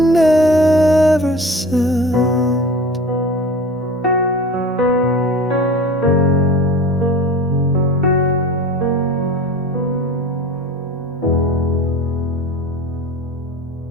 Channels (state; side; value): normal; both; correlation 0.38